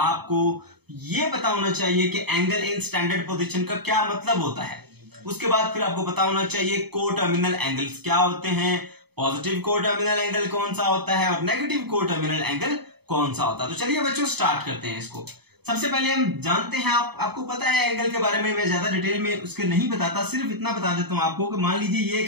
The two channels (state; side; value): late; left; 0.98 ms